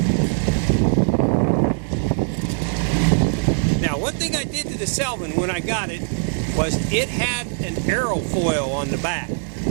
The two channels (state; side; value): silent; left; 63 dB below the other